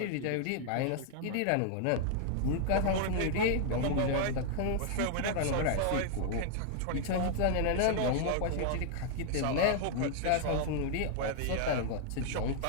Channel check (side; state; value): both; different; correlation -0.01